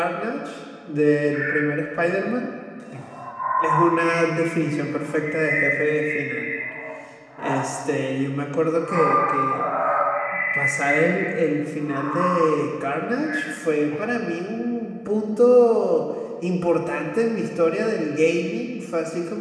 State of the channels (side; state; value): both; identical; correlation 1.00